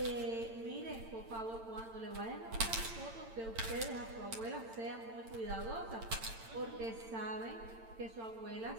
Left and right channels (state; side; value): late; left; 8.9 ms